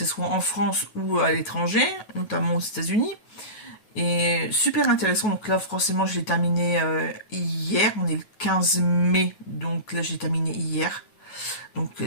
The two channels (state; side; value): late; right; 9.3 ms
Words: soit en France ou à l'étranger, notamment aux États-Unis. Et super intéressant, donc là forcément je l'ai terminé hier, on est le 15 mai, donc là j'ai terminé hier, donc